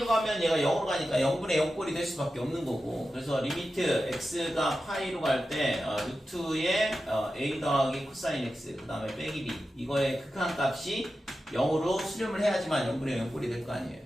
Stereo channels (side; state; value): both; normal; correlation 0.92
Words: 가면 얘가 0으로 가니까 0분의 0꼴이 될 수밖에 없는 거고. 그래서 리미트 x가 파이로 갈 때 루트의 a 더하기 코사인 x 그 다음에 빼기 b 이거의 극한값이 0으로 수렴을 해야지만 0분의 0꼴이 될 거 아니에요.